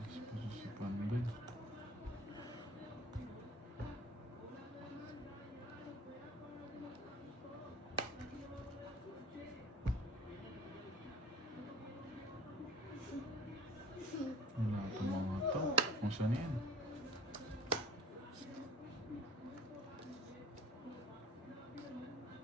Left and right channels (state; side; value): normal; both; correlation 0.46